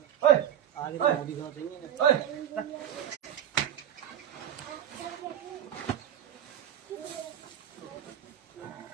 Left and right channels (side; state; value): left; quieter; 10.3 dB